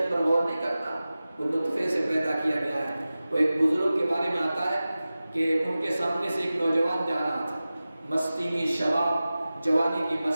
پر غور نہیں کرتا، وہ نطفے سے پیدا کیا گیا ہے۔ وہ ایک بزرگ کے بارے میں آتا ہے کہ ان کے سامنے سے ایک نوجوان جا رہا تھا، مستی میں، شباب جوانی کی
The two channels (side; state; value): both; inverted; correlation -0.96